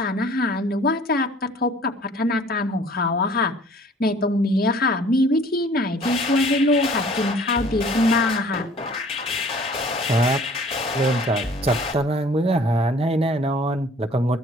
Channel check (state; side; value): normal; both; correlation 0.52